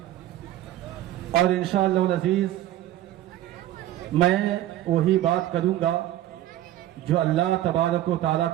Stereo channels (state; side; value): quieter; left; 13.6 dB